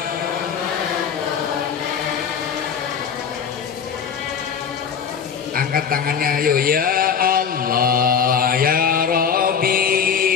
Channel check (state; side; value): quieter; right; 7.1 dB